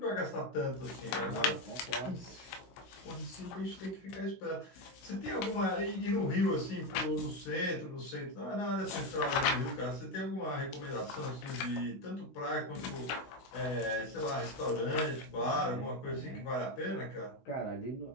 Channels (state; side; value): late; right; 16 ms